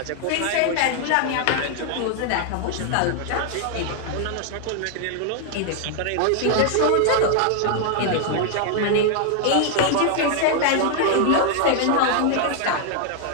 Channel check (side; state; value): both; different; correlation 0.00